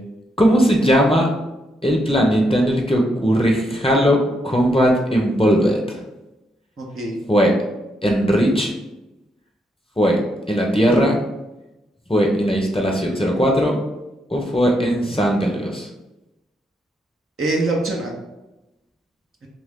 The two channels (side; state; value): both; normal; correlation 0.79